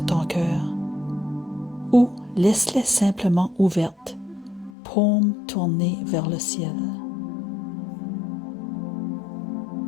ton cœur ou laisse-les simplement ouvertes, paume tournée vers le ciel.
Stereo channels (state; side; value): drops out; right; at 4.7 s